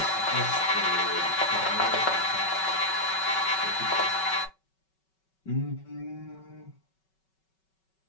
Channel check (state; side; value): late; right; 5.3 ms